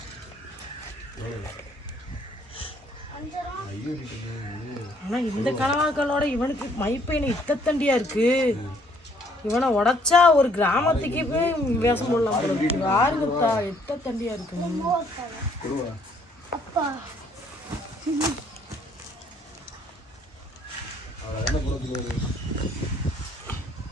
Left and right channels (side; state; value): both; normal; correlation 0.64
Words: ஆனா இந்த கனவாக்களோட இவனுக்கு மைப்பையனை இத்தத்தண்டியா இருக்கு. இவனை உடைச்சா ஒரு கிராமத்துக்கே போய் வேஷம் போடலாம் போல இருக்கு. யாருங்கத்தா இத்தத்தண்டியா இருக்கு.